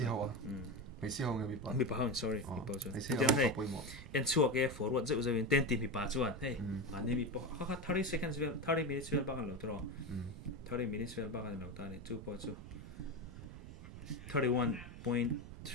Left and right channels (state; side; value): noise; right; rumble, 12 dB below the sound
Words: hawa me si hawa mi pa sorry mi pa chuan entinan hey en chuak e forward zeu zeu in 10 ti mi pa chuan hey ani mi po kha 30 seconds vel 30 minutes vel ba kan lo tro 30 minutes vel ba kan lo ta ni chu po chu